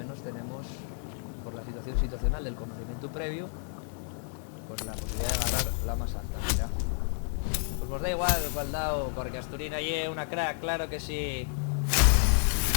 tenemos, por la situación situacional del conocimiento previo, pues la posibilidad de agarrar la más alta. Mira, pues nos da igual cuál dado, porque Asturina es una crack, claro que sí.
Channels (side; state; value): right; silent; 57 dB below the other